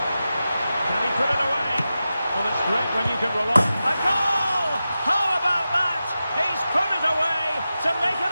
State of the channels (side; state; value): both; inverted; correlation -0.93